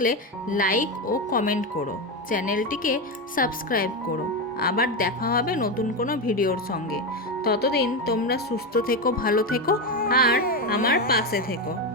লাইক ও কমেন্ট করো, চ্যানেলটিকে সাবস্ক্রাইব করো। আবার দেখা হবে নতুন কোনো ভিডিওর সঙ্গে। ততদিন তোমরা সুস্থ থেকো, ভালো থেকো আর আমার পাশে থেকো।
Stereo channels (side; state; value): both; normal; correlation 0.13